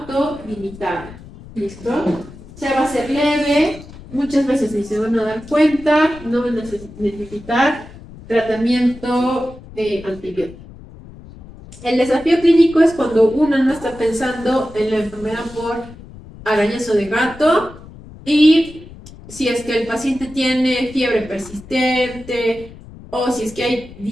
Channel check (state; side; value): noise; left; rumble, 18 dB below the sound